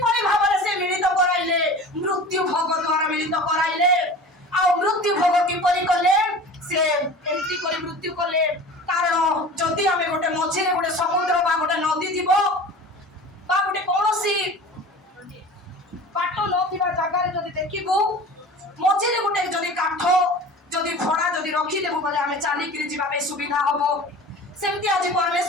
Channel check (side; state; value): both; normal; correlation 0.38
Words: भाबरे से मिलित कराइले मृत्यु भोग द्वारा मिलित कराइले आ मृत्यु भोग किपरि कले से एंती करी मृत्यु कले तार कारण जदि आम गोटे मझे गोटे समुद्र बा गोटे नदी थी गोटे कौन बाट न जगार जदि देखू मझे गोटे जदि काठ जदि भड़ा जदि रखिदेबू बोले आम चलिकी जावाई सुविधा हम सेमती आज